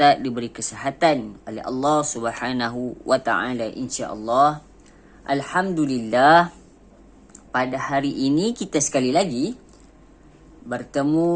diberi kesihatan oleh Allah Subhanahu wa taala insya-Allah. Alhamdulillah, pada hari ini kita sekali lagi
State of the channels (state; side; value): identical; both; correlation 1.00